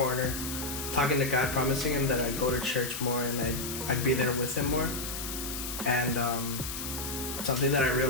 talking to God, promising him that I'd go to church more and I'd be there with him more. And something that I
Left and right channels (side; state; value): left; noise; hiss, 6 dB below the sound